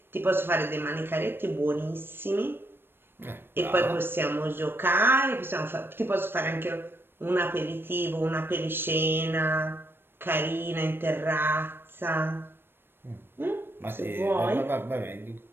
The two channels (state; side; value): late; left; 0.10 ms